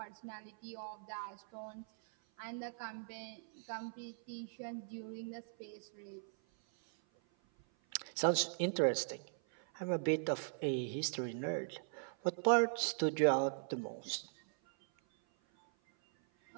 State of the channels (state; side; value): silent; left; 51 dB below the other